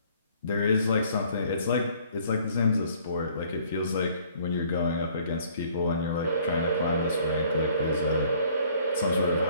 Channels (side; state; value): both; inverted; correlation -0.58